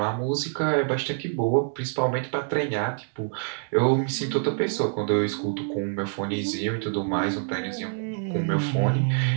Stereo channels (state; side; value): silent; left; 61 dB below the other